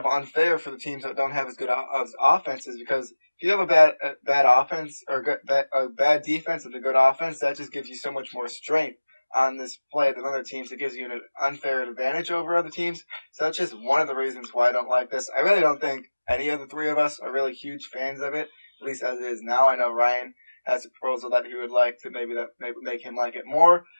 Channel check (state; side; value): inverted; both; correlation -1.00